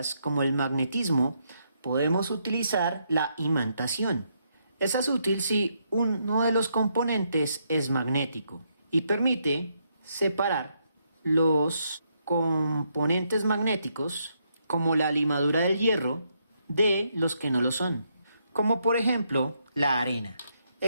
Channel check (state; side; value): inverted; both; correlation -0.77